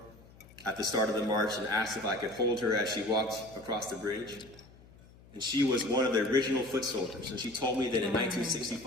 at the start of the march and asked if I could hold her as she walked across the bridge. And she was one of the original foot soldiers. And she told me that in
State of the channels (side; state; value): left; noise; hum, 23 dB below the sound